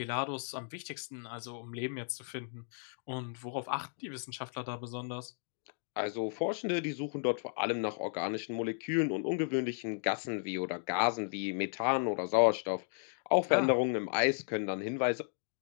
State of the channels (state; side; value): silent; right; digital silence